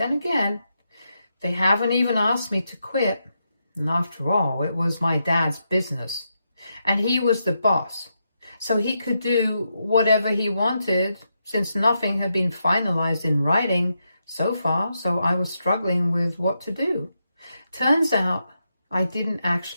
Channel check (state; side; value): inverted; both; correlation -0.84